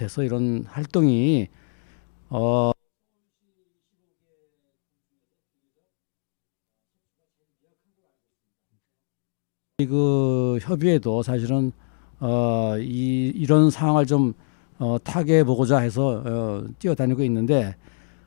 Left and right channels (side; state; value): right; silent; digital silence